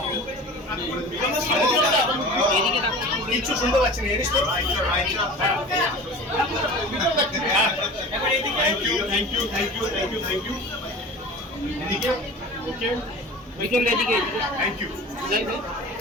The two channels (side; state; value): both; normal; correlation 0.37